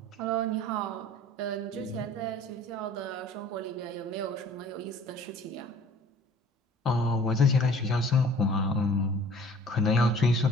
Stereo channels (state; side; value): normal; both; correlation 0.50